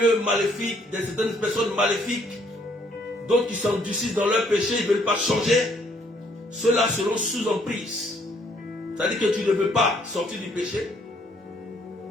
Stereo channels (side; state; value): both; normal; correlation 0.66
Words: maléfiques, de certaines personnes maléfiques, d'autres qui s'endurcissent dans leur péché, ils ne veulent pas changer. Ceux-là seront sous emprise. C'est-à-dire que tu ne veux pas sortir du péché.